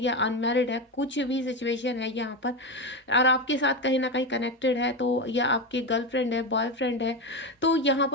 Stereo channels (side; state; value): both; normal; correlation 0.15